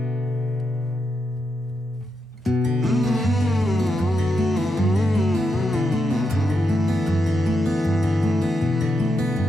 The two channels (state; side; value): normal; both; correlation 0.84